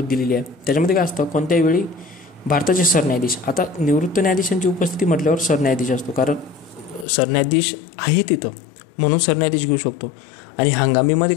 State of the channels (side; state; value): right; drops out; at 7.1 s